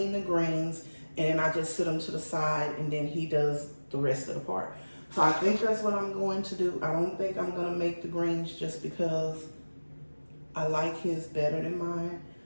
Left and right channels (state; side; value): inverted; both; correlation -1.00